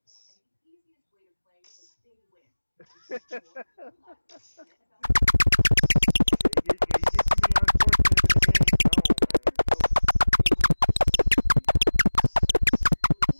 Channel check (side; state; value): both; inverted; correlation -1.00